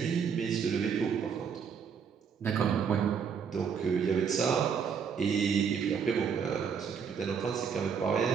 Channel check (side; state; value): left; quieter; 6.8 dB